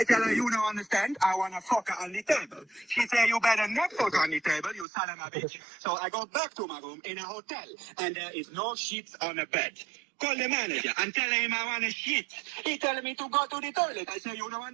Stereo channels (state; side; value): drops out; left; at 4.9 s